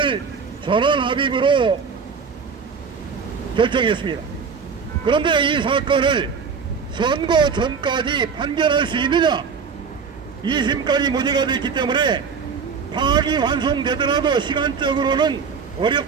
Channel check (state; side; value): quieter; left; 5.8 dB